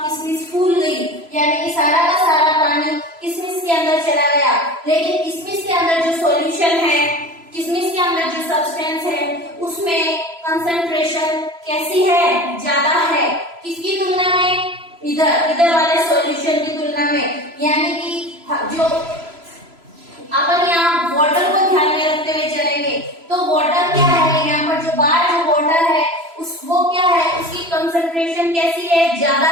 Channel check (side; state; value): left; late; 3.0 ms